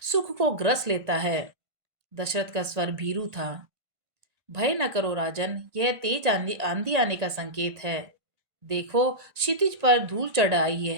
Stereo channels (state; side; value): late; left; 1.8 ms